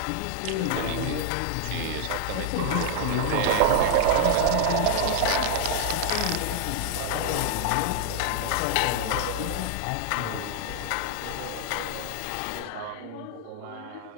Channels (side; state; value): both; different; correlation -0.01